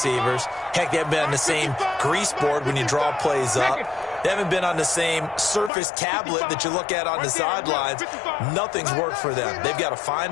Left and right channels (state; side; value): drops out; right; at 5.7 s